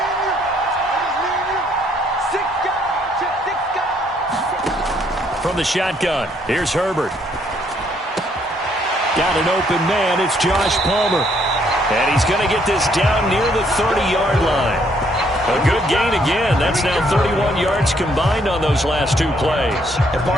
From the shotgun, here's Herbert. Got an open man, it's Josh Palmer. And he's going to get this down near the 30-yard line. A good gain again. That's now 31 yards combined on those last 2 plays. And,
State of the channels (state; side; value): normal; both; correlation 0.68